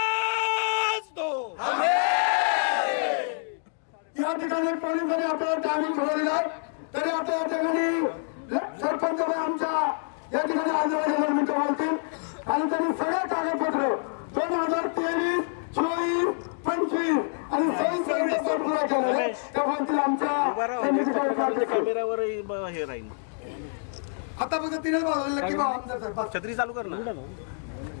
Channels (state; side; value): silent; right; digital silence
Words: दो. या ठिकाणी पोलिसांनी आपला टायमिंग ठरवलेला आहे, तरी आता या ठिकाणी सरपंच आमच्या या ठिकाणी आजूबाजूला मित्र बोलतील आणि त्यांनी सगळे कागदपत्र 2023, 24, 25 आणि 26 पुरा केलं. त्या बोलतील आमच्या समितीकडे हे राहील. आता फक्त 3च वाजवलं की बाबा आमदार साहेब छत्री चालू कर ना.